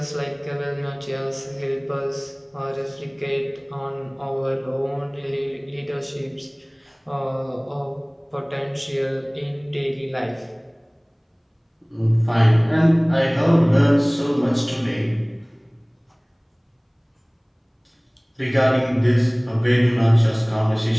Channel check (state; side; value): identical; both; correlation 1.00